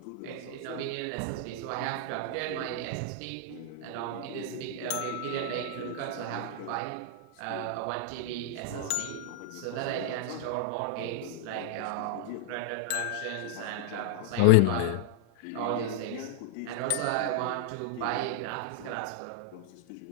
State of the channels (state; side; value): different; both; correlation -0.01